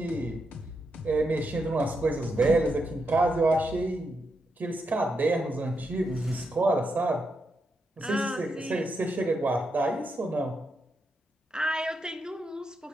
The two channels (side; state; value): both; normal; correlation 0.83